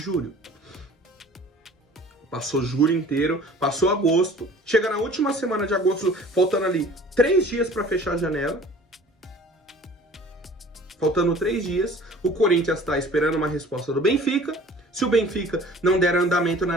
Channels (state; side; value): normal; both; correlation 0.48